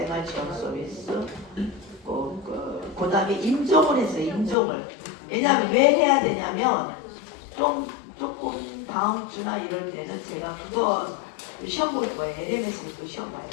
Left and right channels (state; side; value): drops out; right; at 4.5 s